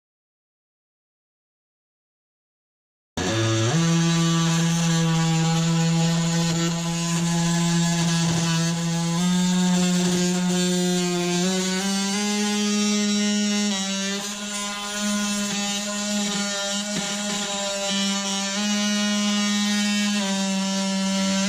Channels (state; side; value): identical; both; correlation 1.00